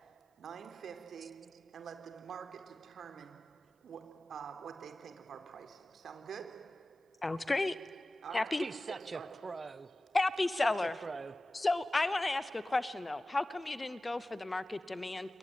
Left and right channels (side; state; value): both; normal; correlation 0.96